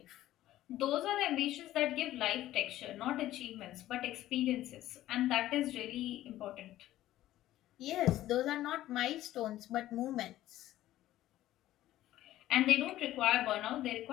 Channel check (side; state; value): right; quieter; 14.3 dB